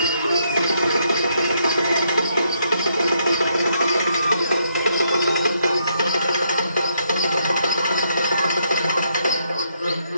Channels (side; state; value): both; inverted; correlation -0.75